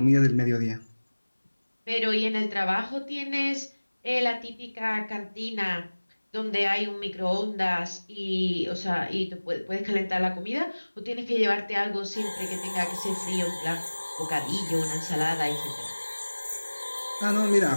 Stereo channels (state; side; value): inverted; both; correlation -1.00